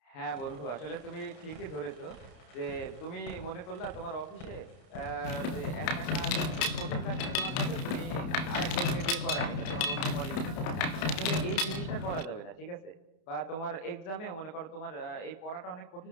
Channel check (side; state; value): right; late; 31 ms